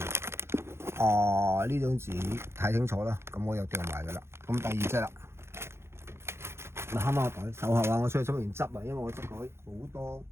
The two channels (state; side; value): late; left; 0.12 ms